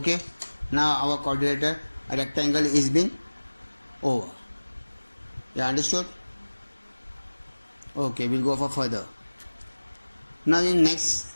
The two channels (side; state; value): both; inverted; correlation -1.00